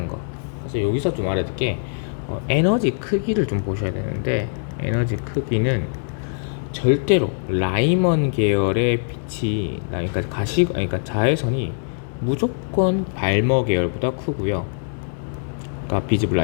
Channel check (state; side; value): silent; right; digital silence